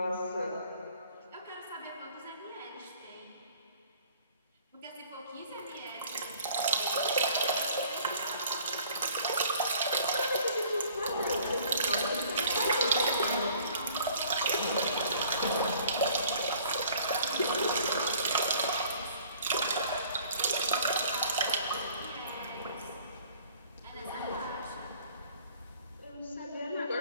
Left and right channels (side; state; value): both; inverted; correlation -0.54